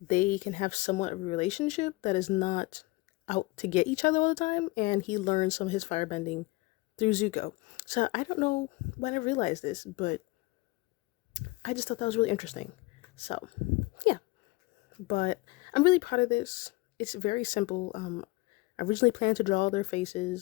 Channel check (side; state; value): right; quieter; 21.8 dB